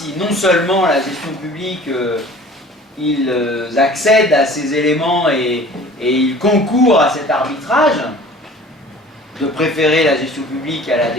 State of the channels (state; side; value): normal; both; correlation 0.46